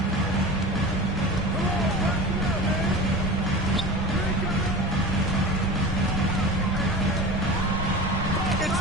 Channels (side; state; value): both; normal; correlation 0.32